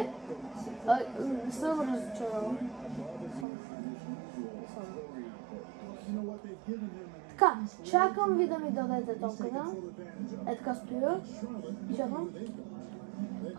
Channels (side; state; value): left; drops out; at 3.5 s